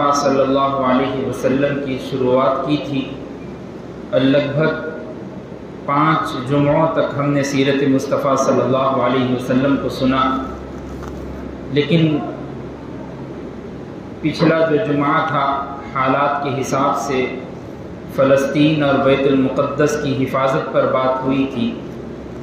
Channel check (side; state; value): both; identical; correlation 1.00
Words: صلی اللہ علیہ وسلم کی شروعات کی تھی اور لگ بھگ 5 جمعوں تک ہم نے سیرت مصطفیٰ صلی اللہ علیہ وسلم کو سنا، لیکن پچھلا جو جمعہ تھا حالات کے حساب سے فلسطین اور بیت المقدس کی حفاظت پر بات ہوئی تھی۔